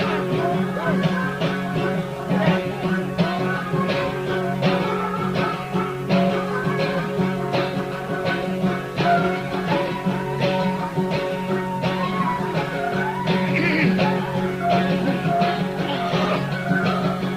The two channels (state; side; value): identical; both; correlation 1.00